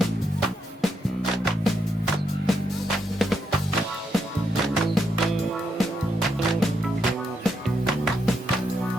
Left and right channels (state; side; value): normal; both; correlation 0.80